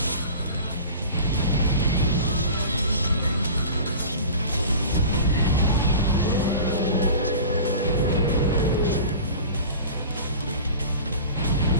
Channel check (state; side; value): inverted; both; correlation -0.37